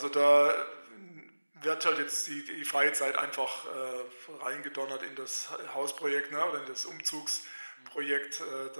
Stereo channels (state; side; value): inverted; both; correlation -1.00